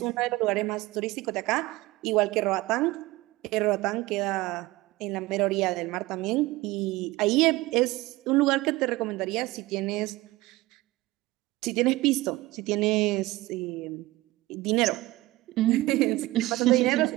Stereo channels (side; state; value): left; quieter; 19.2 dB